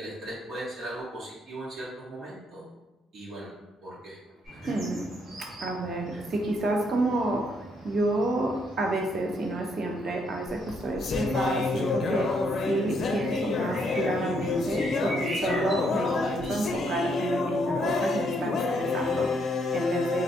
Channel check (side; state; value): both; normal; correlation 0.73